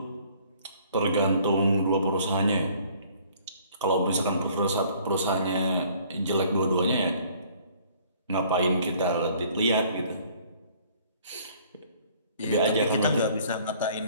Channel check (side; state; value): both; inverted; correlation -0.57